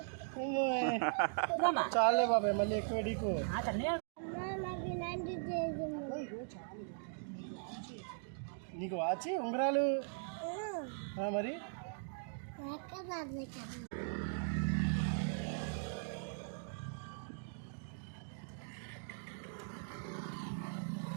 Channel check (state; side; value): silent; left; digital silence